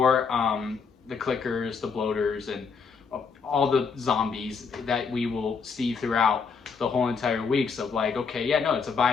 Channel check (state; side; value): quieter; right; 5.5 dB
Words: the clickers, the bloaters, and all the zombies that we will see throughout the whole entire weeks of like, okay, yeah, no, it's a